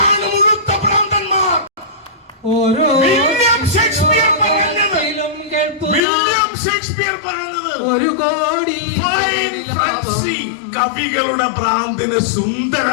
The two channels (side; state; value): right; drops out; at 6.0 s